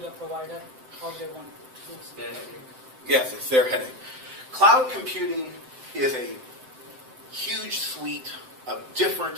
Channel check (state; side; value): late; left; 7.8 ms